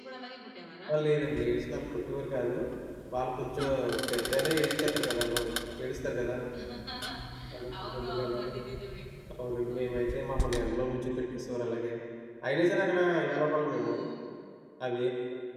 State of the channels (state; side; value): identical; both; correlation 1.00